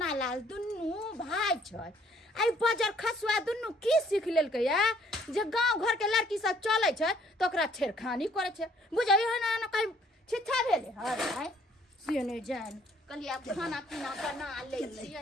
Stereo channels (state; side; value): normal; both; correlation 0.62